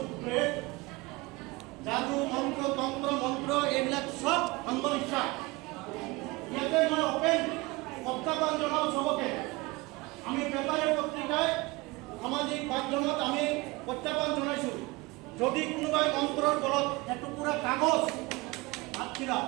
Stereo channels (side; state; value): left; quieter; 23.3 dB